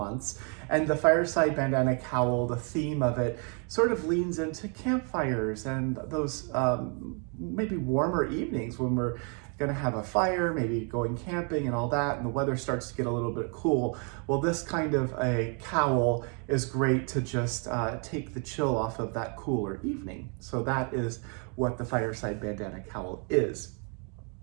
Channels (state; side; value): quieter; left; 38.0 dB